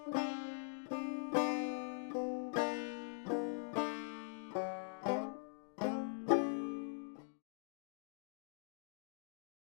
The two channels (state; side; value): silent; right; digital silence